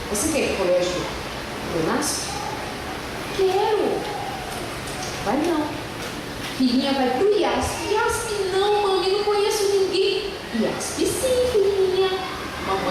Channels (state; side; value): identical; both; correlation 1.00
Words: Você quer ir para o colégio do NASP? Quero. Vai não. Filhinha vai para o IASP. IASP não, mami, não conheço ninguém. IASP sim, filhinha.